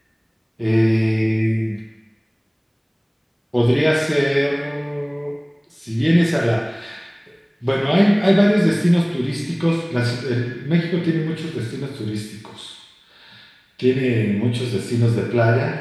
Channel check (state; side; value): identical; both; correlation 1.00